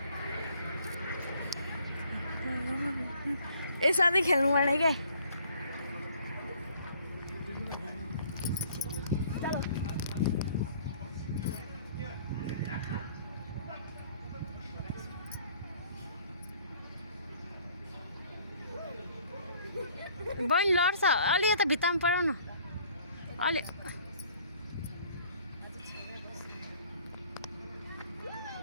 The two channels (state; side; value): inverted; both; correlation -0.58